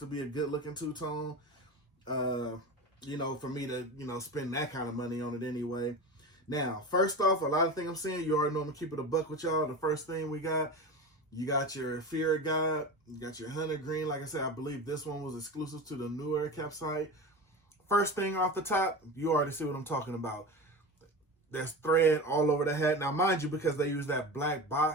be a good-looking 2-tone. For me to, spend that kind of money on it anyway. Now, first off, a lot of things I'm saying, you already know I'm going to keep it a buck with y'all. The first thing you got your Fear of God, you got your Hunter Green. Like I said, I believe this one was exclusive to the New Era Cap site. First thing off the top, you already see what I'm talking about. There's thread all over the hat. Now, mind you, because they use that black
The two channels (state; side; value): normal; both; correlation 0.27